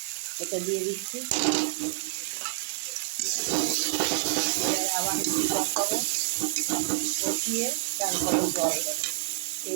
এটা দিয়ে দিচ্ছি। আবার একটু কষাবো, কষিয়ে তারপরে জল দেবো।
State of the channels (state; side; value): silent; left; digital silence